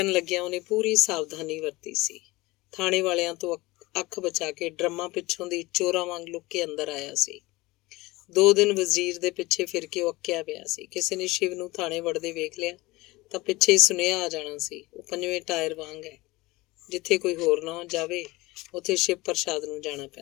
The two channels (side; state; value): right; quieter; 21.1 dB